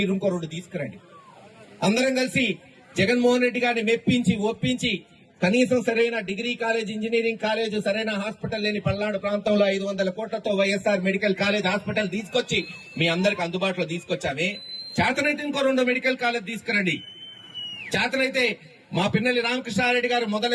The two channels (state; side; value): identical; both; correlation 1.00